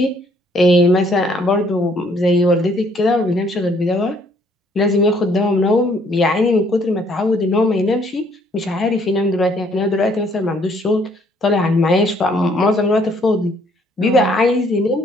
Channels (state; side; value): normal; both; correlation 0.64